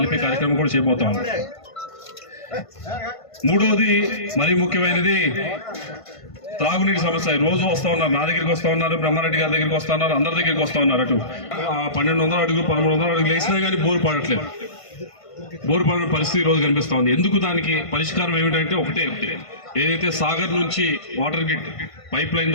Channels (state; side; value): late; right; 1.5 ms